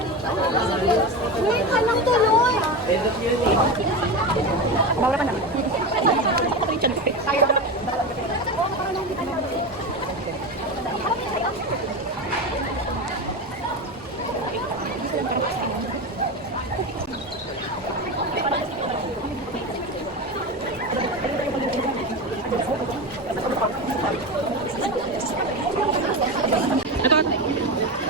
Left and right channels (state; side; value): normal; both; correlation 0.21